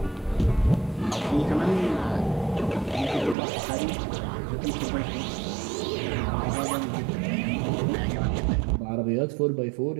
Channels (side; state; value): left; drops out; at 3.4 s